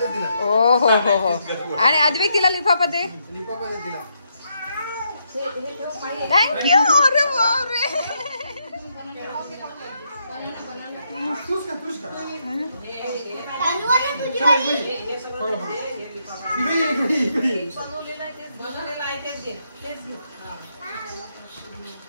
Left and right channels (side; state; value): both; inverted; correlation -0.78